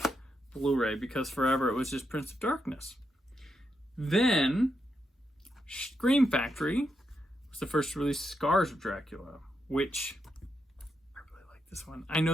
Blu-ray, because forever it was just Prince of Darkness. Then, Scream Factory was the first to release Scars of Dracula, which I really like this one. I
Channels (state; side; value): normal; both; correlation 0.83